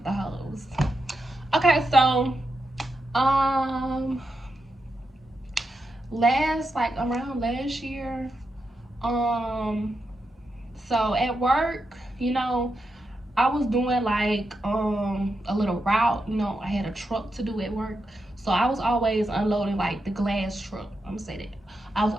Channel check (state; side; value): normal; both; correlation 0.86